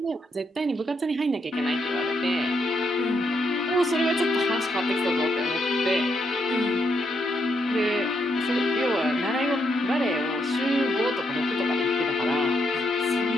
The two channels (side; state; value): both; normal; correlation 0.78